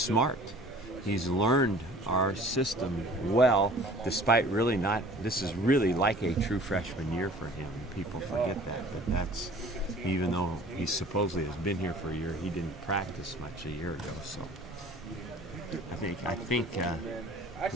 He's learned our system well, despite really not. This is really like a true freshman year for him. People forget that, but that's, even though he supposedly has been here for a year, he didn't practice much a year ago. So I think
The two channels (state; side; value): normal; both; correlation 0.48